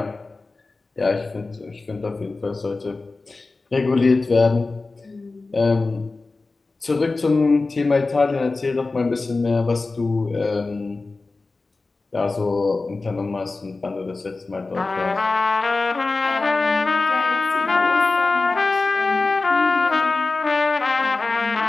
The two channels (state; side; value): quieter; right; 3.6 dB